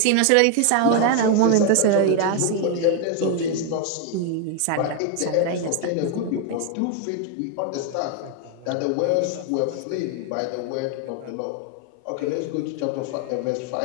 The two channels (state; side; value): different; both; correlation 0.00